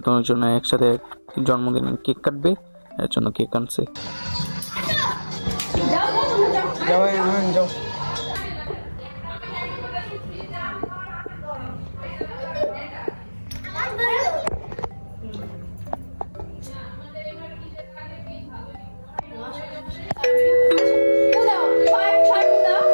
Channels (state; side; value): inverted; both; correlation -1.00